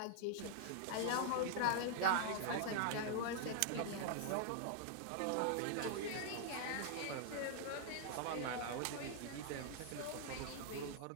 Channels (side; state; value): both; different; correlation -0.01